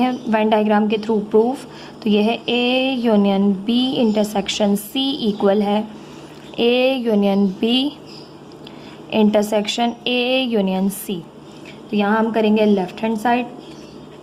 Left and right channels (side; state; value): both; identical; correlation 1.00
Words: वेन डायग्राम के थ्रू प्रूफ। तो ये है A union B intersection C equal है A union B intersection A union C. तो यहाँ हम करेंगे left hand side